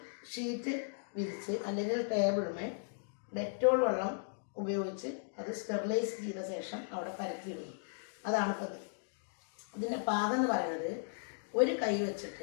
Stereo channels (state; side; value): silent; right; digital silence